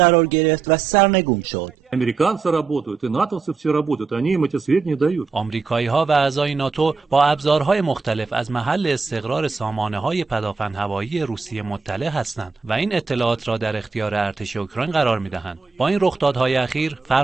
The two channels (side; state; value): left; quieter; 4.8 dB